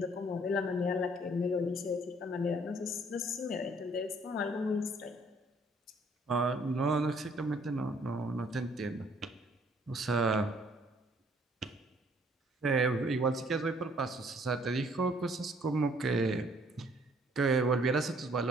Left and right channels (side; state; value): both; normal; correlation 0.62